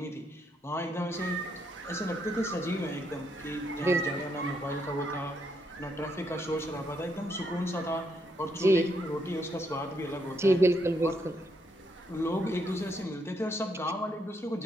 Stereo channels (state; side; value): normal; both; correlation 0.76